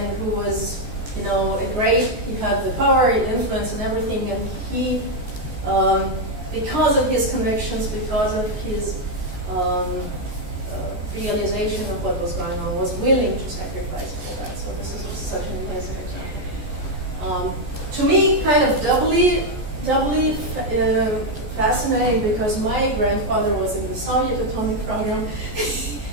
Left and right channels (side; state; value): left; late; 14 ms